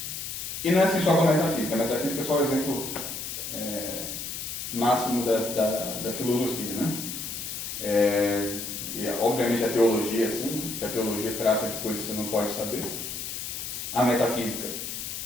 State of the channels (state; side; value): noise; left; hiss, 6 dB below the sound